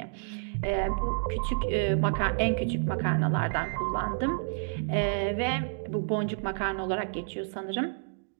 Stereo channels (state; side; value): silent; left; digital silence